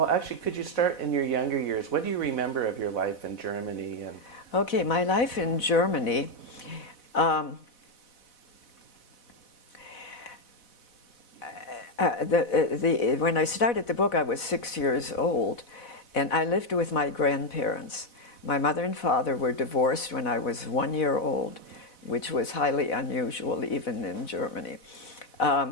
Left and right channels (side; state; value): right; late; 4.1 ms